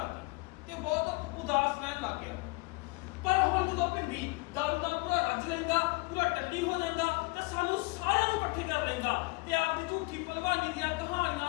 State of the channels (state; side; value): quieter; right; 26.5 dB